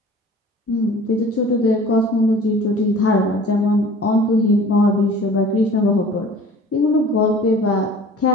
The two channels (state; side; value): normal; both; correlation 0.45